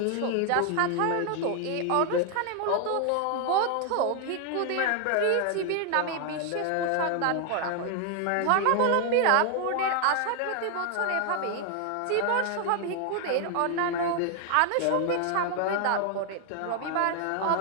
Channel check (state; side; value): different; both; correlation 0.00